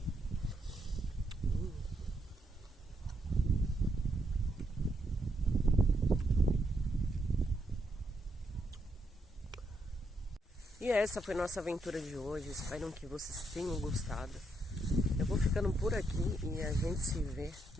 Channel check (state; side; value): normal; both; correlation 0.78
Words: E essa foi nossa aventura de hoje. Espero que vocês tenham gostado. Eu vou ficando por aqui e a gente se vê